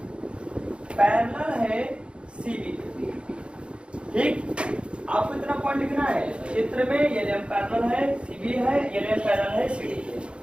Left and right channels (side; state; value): left; late; 0.057 ms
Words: पैरेलल है सीबी। ठीक, आपको इतना पॉइंट लिखना है, चित्र में यम पैरेलल है सीबी है, यम पैरेलल है सीडी है।